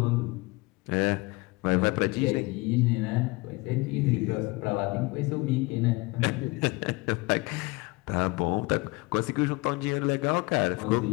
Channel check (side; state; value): right; quieter; 24.4 dB